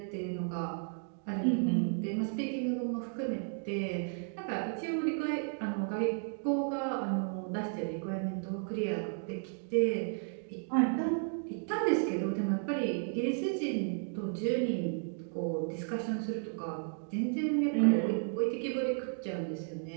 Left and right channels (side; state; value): left; silent; 55 dB below the other